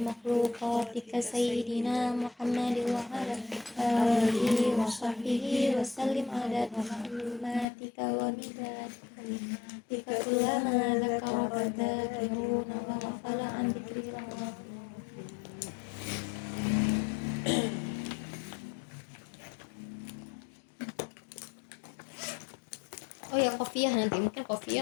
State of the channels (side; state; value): right; drops out; at 7.7 s